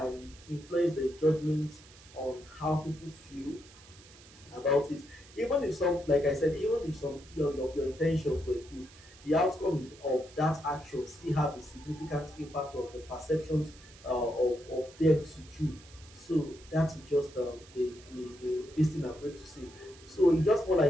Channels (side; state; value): right; noise; hiss, 22 dB below the sound